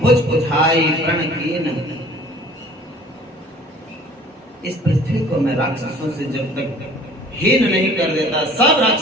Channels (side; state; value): both; normal; correlation 0.50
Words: उठाई प्रण कीन। इस पृथ्वी को मैं राक्षसों से जब तक हीन नहीं कर देता, सब